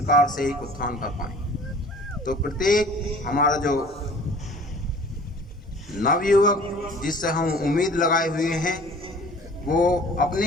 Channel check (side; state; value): both; normal; correlation 0.48